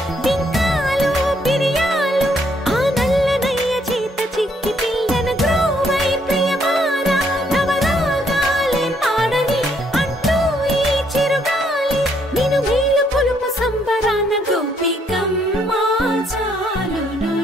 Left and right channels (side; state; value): both; normal; correlation 0.70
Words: బింకాలు బిరియాలు ఆ నల్లనయ్య చేత చిక్కి పిల్లన గ్రోవై ప్రియమారా నవరాగాలే పాడని అంటూ ఈ చిరుగాలి నిన్ను మేలు కొలుపు సంబరాన గోపికమ్మ